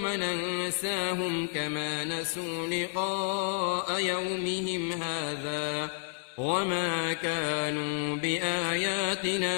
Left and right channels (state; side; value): silent; right; 56 dB below the other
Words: ننساهم كما نسوا لقاء يومهم هذا وما كانوا